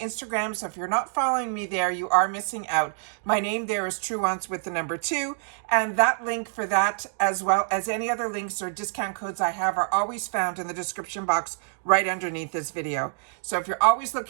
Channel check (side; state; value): left; silent; digital silence